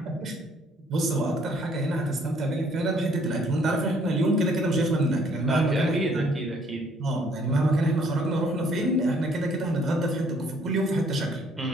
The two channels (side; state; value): both; normal; correlation 0.63